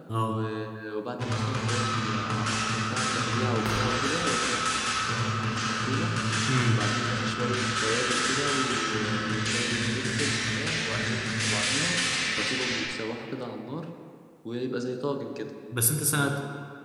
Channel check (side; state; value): both; identical; correlation 1.00